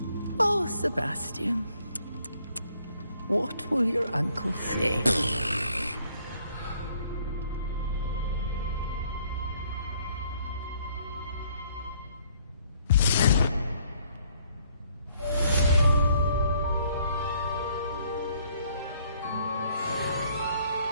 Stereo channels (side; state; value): both; inverted; correlation -0.65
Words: Oh, Sebastian. What will your uncle say?